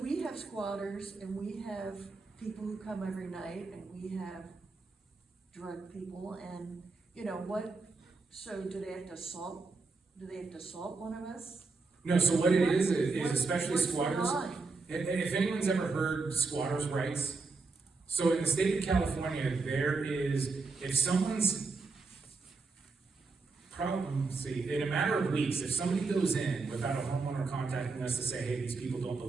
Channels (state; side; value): quieter; left; 4.0 dB